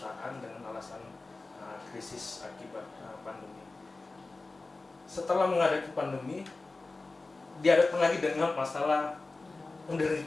dengan alasan krisis akibat pandemi. Setelah menghadapi pandemi, dihadapkan lagi dengan masalah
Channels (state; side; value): quieter; right; 3.4 dB